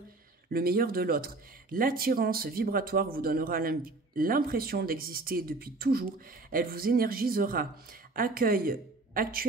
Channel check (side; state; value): left; quieter; 3.3 dB